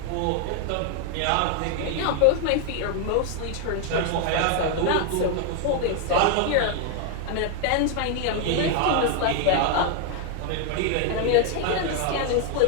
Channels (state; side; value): different; both; correlation 0.01